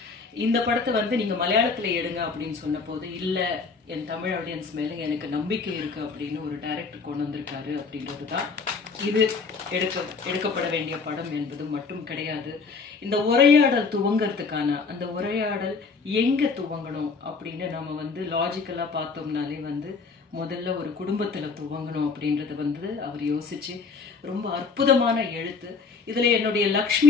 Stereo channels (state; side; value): quieter; right; 4.8 dB